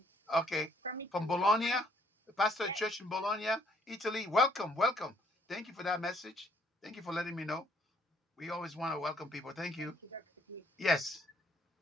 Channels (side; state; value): both; normal; correlation 0.65